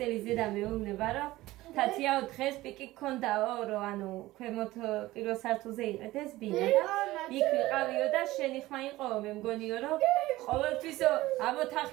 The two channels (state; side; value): quieter; left; 17.6 dB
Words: ზედა მეუბნება, რომ თათიაო დღეს პიკი გქონდაო, რომ ანუ ქვემოთ პირველ სართულზე იყედეს ბინა და იქ ვიყავიო და შენი ხმა იყოო, მე მგონიო, რომ ყოველთვისო ამ